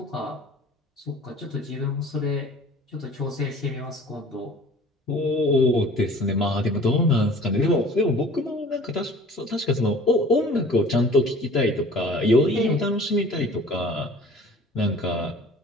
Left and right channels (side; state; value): both; normal; correlation 0.47